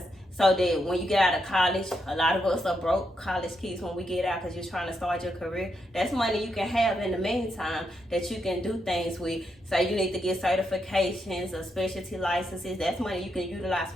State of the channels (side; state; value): both; normal; correlation 0.81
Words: so that when you get out of college, a lot of us are broke college kids when we get out because you're trying to start your career. That's money you can have in the meantime that you can do things with. Say you need to get certifications or specialty licenses. That's money you can utilize